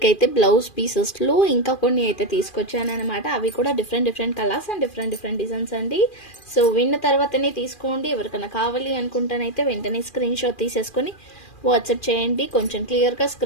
అయితే బ్లౌజ్ పీసెస్లో ఇంకా కొన్ని అయితే తీసుకొచ్చాను అనమాట. అవి కూడా different colours and different designs అండి. సో విన్న తర్వాతనే తీసుకోండి. ఎవరికైనా కావాలి అనుకుంటానైతే వెంటనే స్క్రీన్ షాట్ తీసేసుకొని వాట్సాప్ చేయండి. కొంచెం క్లియర్గా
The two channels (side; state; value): right; late; 2.4 ms